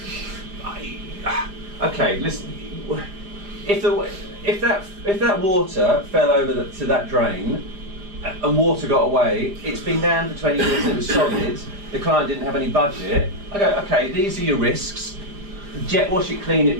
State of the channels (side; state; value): left; late; 5.0 ms